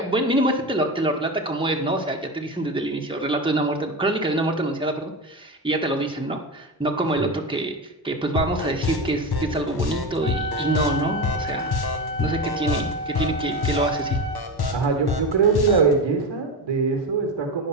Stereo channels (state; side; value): normal; both; correlation 0.21